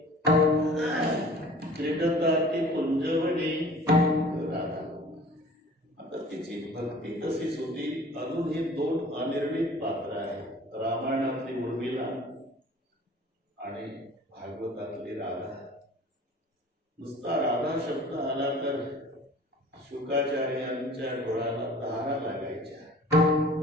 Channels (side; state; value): both; normal; correlation 0.46